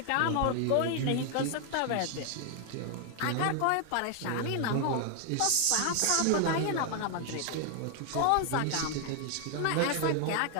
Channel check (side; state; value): both; different; correlation 0.00